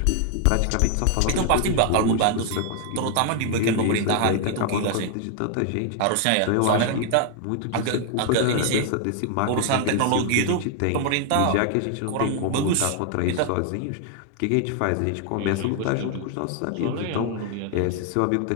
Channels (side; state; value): both; different; correlation 0.00